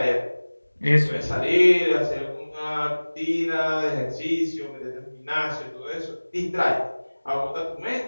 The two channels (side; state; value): both; inverted; correlation -1.00